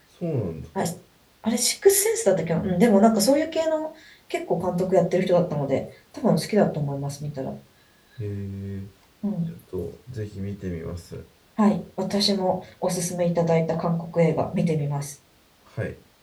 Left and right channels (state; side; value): identical; both; correlation 1.00